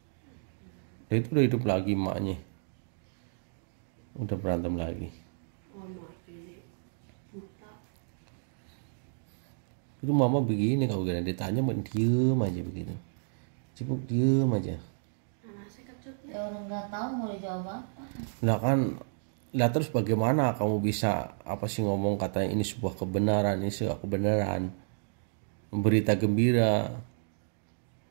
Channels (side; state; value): left; silent; digital silence